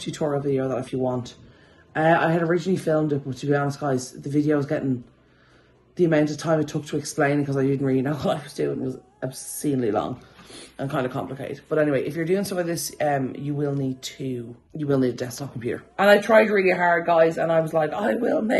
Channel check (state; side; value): identical; both; correlation 1.00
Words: tutorial video that if you want. I had originally filmed it, but to be honest guys, the video was getting, the amount of time it took to explain it, because I didn't really know what I was doing, was obscenely long and kind of complicated. But anyway, if you're doing some of this, you will need a desktop computer. And I tried really hard guys, and I was like, I will